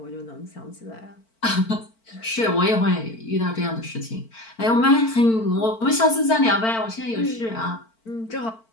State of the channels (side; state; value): right; late; 4.5 ms